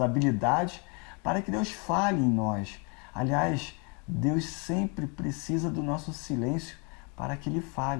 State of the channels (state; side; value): quieter; right; 34.1 dB